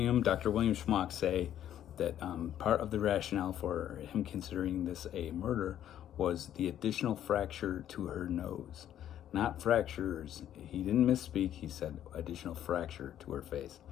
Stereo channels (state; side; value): quieter; right; 11.0 dB